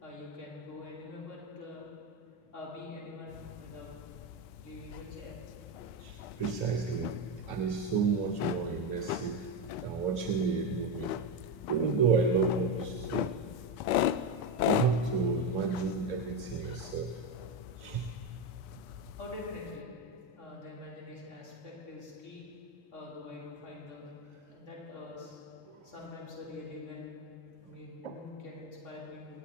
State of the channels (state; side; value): late; right; 4.3 ms